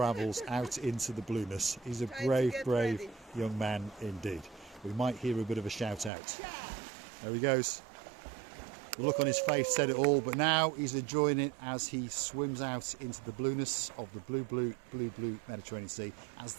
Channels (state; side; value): drops out; left; at 6.1 s